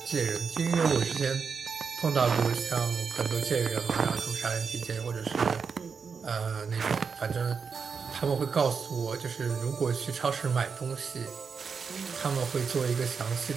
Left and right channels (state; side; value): quieter; left; 5.7 dB